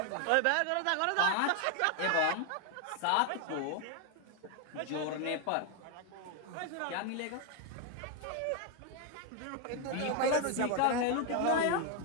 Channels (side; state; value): both; different; correlation 0.01